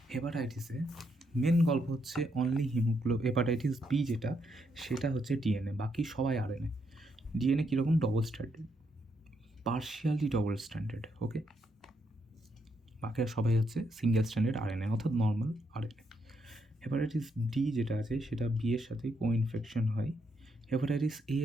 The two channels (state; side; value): normal; both; correlation 0.77